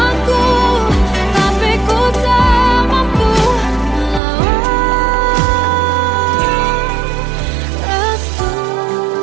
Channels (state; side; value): drops out; left; at 4.2 s